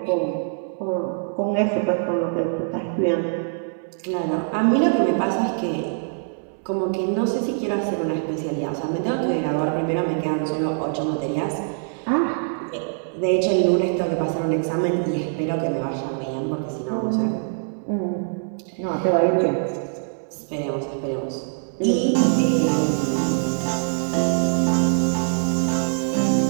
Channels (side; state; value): left; silent; 63 dB below the other